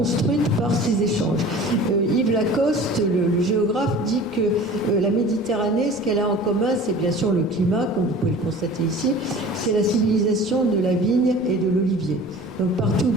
par ces échanges. Yves Lacoste, le géographe, dit que la Méditerranée, ce qu'elle a en commun, c'est bien sûr le climat, comme vous pouvez le constater ici, c'est la civilisation de la vigne et de l'olivier. Donc partout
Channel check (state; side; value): noise; right; rumble, 26 dB below the sound